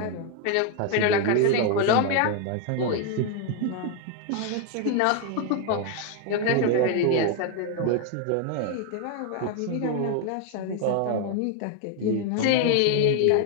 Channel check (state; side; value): different; both; correlation 0.01